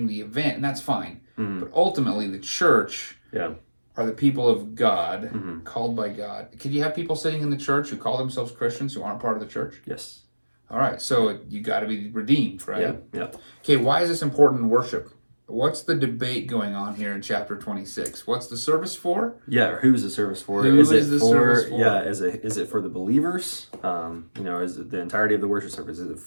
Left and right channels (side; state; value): both; inverted; correlation -1.00